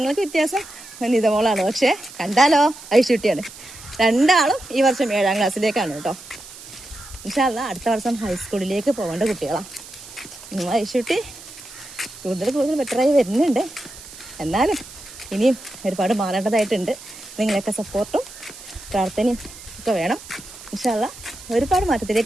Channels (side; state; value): right; noise; hiss, 16 dB below the sound